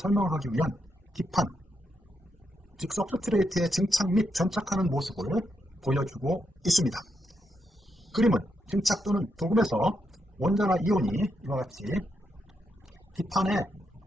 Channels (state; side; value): normal; both; correlation 0.82